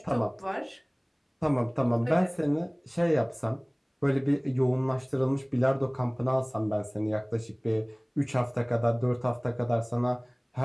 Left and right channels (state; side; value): identical; both; correlation 1.00